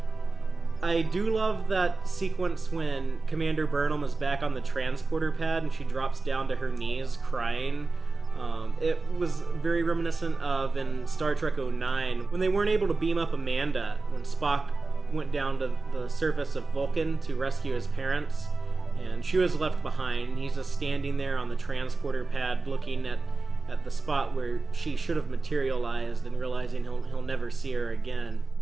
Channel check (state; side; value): quieter; left; 3.7 dB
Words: I do love that sequence when Commander Burnham is back on the transporter pad and she drops down to her knees crying. It was very reminiscent of in Star Trek 09 when they weren't able to beam up Amanda when Spock went down to the surface of Vulcan to rescue his parents, and she was left behind. He's just standing there on the transporter pad looking at the spot where she should have materialized and realizing he'll never see her again.